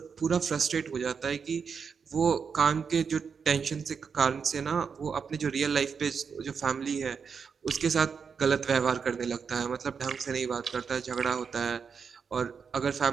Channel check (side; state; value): left; quieter; 6.1 dB